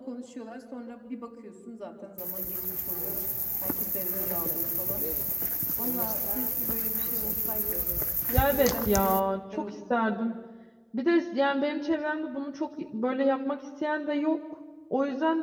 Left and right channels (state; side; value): identical; both; correlation 1.00